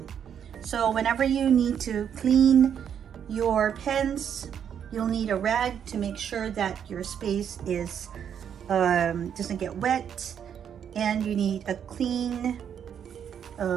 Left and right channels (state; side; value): quieter; left; 8.5 dB